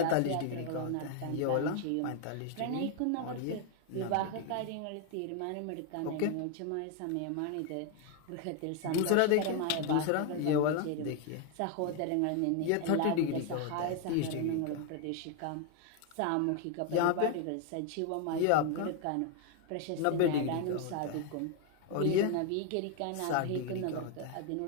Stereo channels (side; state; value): both; different; correlation 0.01